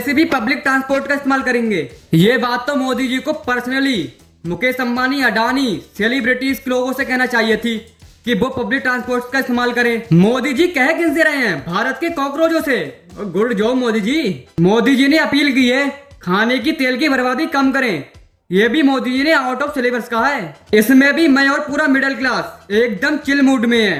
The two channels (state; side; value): identical; both; correlation 1.00